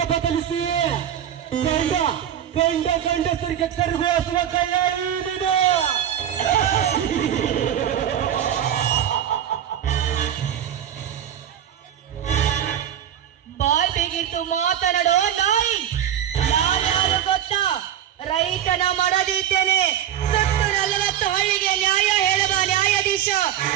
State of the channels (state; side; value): quieter; left; 10.3 dB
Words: ಬದಲಿಸಿ ಗಂಡಸರಿಗೆ ಕರಗುವ ಕೈಯ ಬಾಯ್ ಬೇಗಿತ್ತು ಮಾತನಾಡೋ ನಾಯಿ. ನಾನ್ಯಾರು ಗೊತ್ತಾ? ರೈತನ ಮಾಡದಿದ್ದೇನೆ. ಸತ್ತು 40 ಹಳ್ಳಿಗೆ ನ್ಯಾಯ ಹೇಳುವ ನ್ಯಾಯಾಧೀಶ.